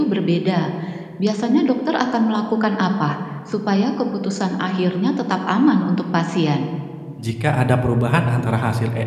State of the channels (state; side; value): identical; both; correlation 1.00